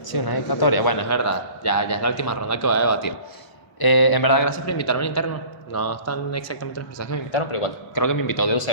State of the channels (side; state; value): right; late; 1.0 ms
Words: Sí, una dedicatoria. Bueno, es verdad. Ya es la última ronda que voy a debatir. En verdad, gracias por invitarme al interno. No están exactamente las personas que me invitaron, pero igual creo que me invitó de